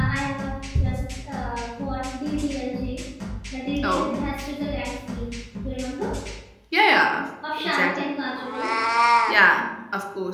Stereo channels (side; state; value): both; identical; correlation 1.00